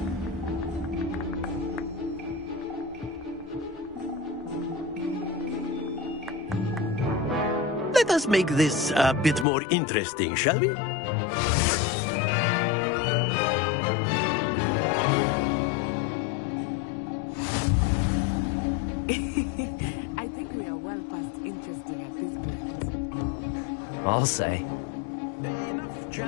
Let us make this a bit more interesting, shall we? I think we are well past interesting at this point. I'll say. Enough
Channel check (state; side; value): drops out; right; at 9.5 s